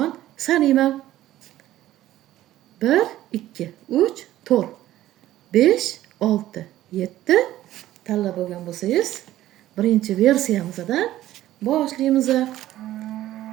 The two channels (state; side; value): quieter; left; 14.2 dB